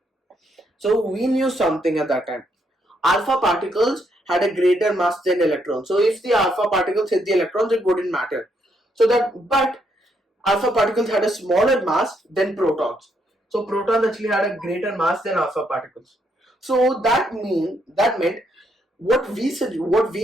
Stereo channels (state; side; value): normal; both; correlation 0.75